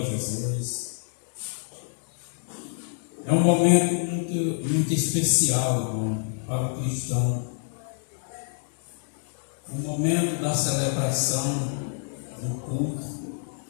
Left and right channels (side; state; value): right; silent; 58 dB below the other